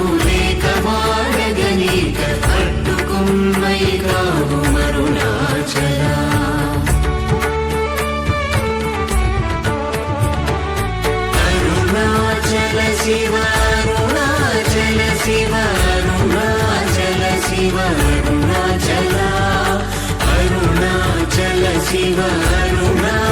లేక వాడగని కావు అరుణాచల అరుణాచల శివ అరుణాచల శివ అరుణాచల శివ అరుణాచల అరుణాచల శివ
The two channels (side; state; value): both; identical; correlation 1.00